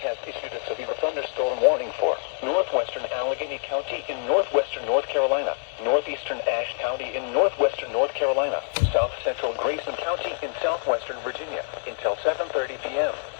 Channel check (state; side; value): silent; right; digital silence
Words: Has issued a severe thunderstorm warning for northwestern Allegheny County in northwestern North Carolina, northeastern Ashe County in northwestern North Carolina, south central Grayson County in southwestern Virginia until 7:30 p.m.